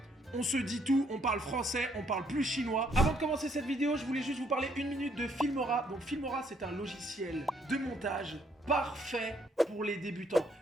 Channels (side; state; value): both; normal; correlation 0.69